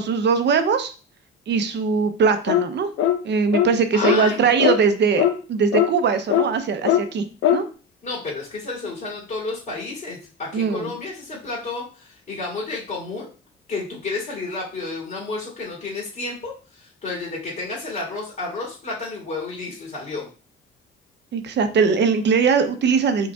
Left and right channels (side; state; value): both; normal; correlation 0.15